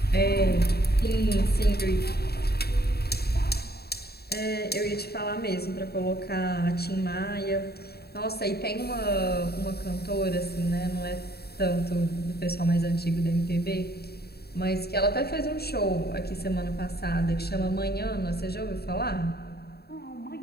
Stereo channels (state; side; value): late; right; 0.46 ms